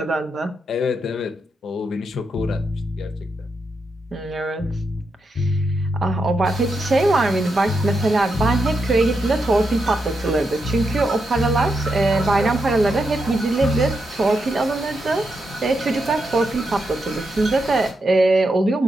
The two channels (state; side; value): normal; both; correlation 0.84